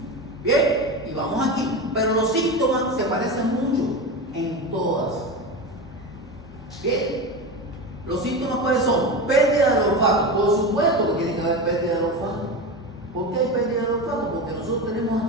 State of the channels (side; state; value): both; normal; correlation 0.23